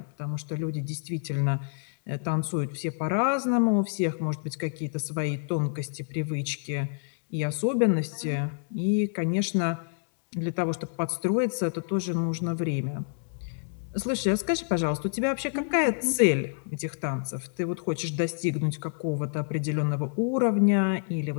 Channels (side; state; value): right; silent; digital silence